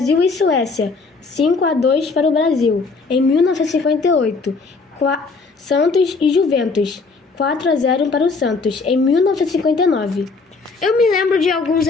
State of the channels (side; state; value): right; quieter; 4.2 dB